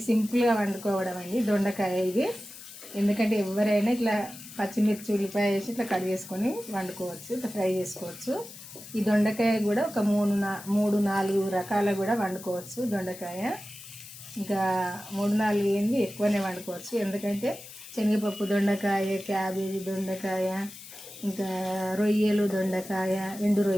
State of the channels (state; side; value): noise; left; hiss, 15 dB below the sound